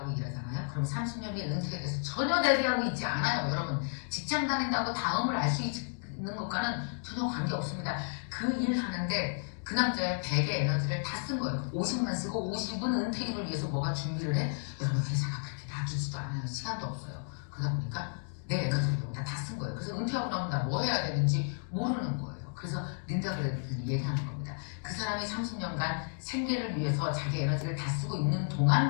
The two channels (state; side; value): silent; right; 56 dB below the other